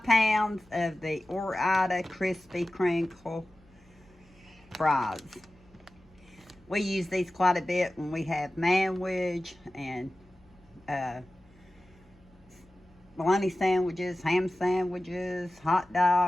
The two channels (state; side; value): noise; left; hum, 30 dB below the sound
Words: pounds of the Ore-Ida Crispy Crinkle fries. We use these quite a bit when we have manwich and bologna sandwiches, ham sandwiches, hot